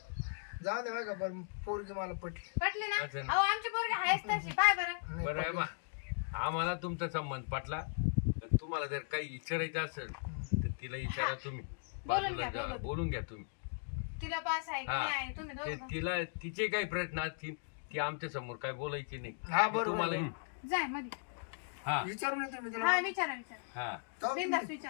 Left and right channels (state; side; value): silent; right; digital silence